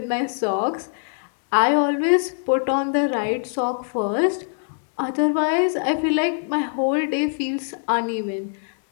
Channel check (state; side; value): silent; right; 61 dB below the other